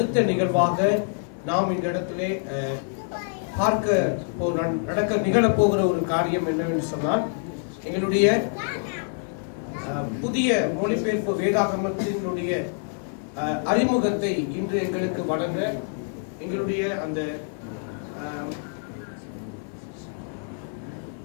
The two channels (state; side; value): silent; right; 61 dB below the other